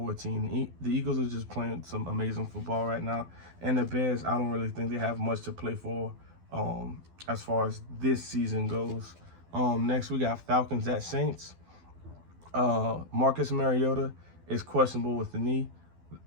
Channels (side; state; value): left; late; 12 ms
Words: The Eagles are just playing some amazing football right now. And the Bears, I don't really think they have much to play for as far as this season goes. Next, we got Falcons at Saints. Marcus Mariota is questionable with the knee.